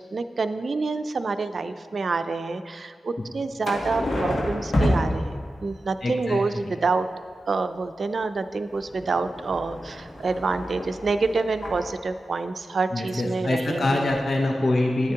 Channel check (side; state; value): both; normal; correlation 0.92